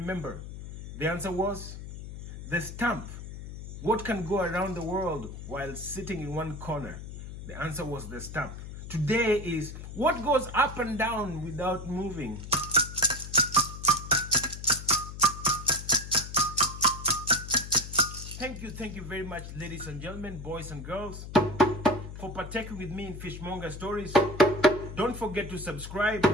the answer was the stamp. What can go around the world while sitting in one corner? The answer was the stamp. Today is, what goes up and down without moving? Thank you very much, ladies and gentlemen, boys and girls, for partaking with me in Fishmonger Stories. Don't forget to subscribe.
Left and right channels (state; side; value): noise; left; hum, 10 dB below the sound